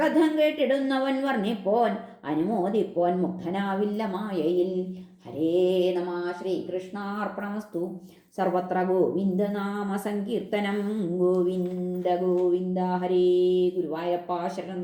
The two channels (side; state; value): both; identical; correlation 1.00